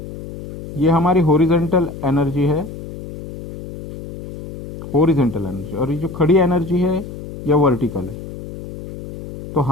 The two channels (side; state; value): left; noise; hum, 12 dB below the sound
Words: ये हमारी हॉरिजॉन्टल एनर्जी है, हॉरिजॉन्टल एनर्जी। और ये जो खड़ी एनर्जी है यह वर्टिकल है। तो